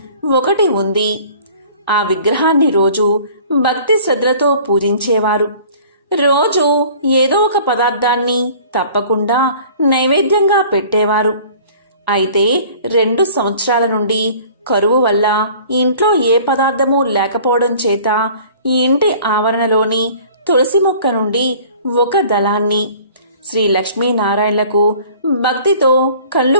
ఒకటి ఉంది. ఆ విగ్రహాన్ని రోజు భక్తి శ్రద్ధలతో పూజించేవారు. రోజు ఏదో ఒక పదార్థాన్ని తప్పకుండా నైవేద్యంగా పెట్టేవారు. అయితే 2 సంవత్సరాల నుండి కరువు వల్ల ఇంట్లో ఏ పదార్థమూ లేకపోవడం చేత ఈ ఇంటి ఆవరణలోని తులసి మొక్క నుండి ఒక దళాన్ని శ్రీ లక్ష్మీనారాయణలకు భక్తితో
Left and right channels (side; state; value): both; inverted; correlation -0.49